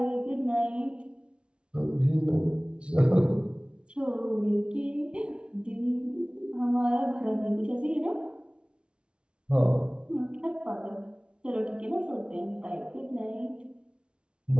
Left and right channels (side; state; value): left; late; 0.058 ms